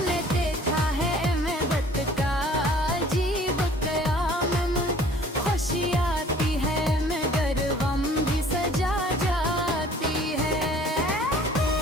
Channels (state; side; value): normal; both; correlation 0.52